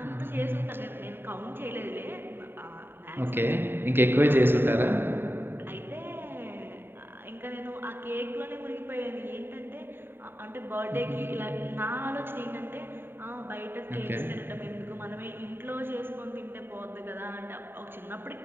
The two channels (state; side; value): late; left; 0.10 ms